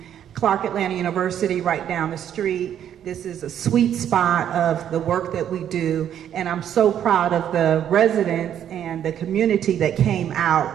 Clark Atlanta University right down the street. This is a sweet spot of the work that we do, and I'm so proud of the residents and the community that came out,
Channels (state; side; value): quieter; left; 9.9 dB